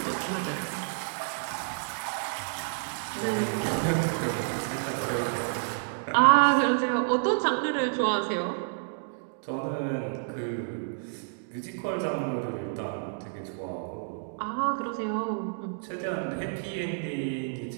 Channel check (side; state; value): left; silent; digital silence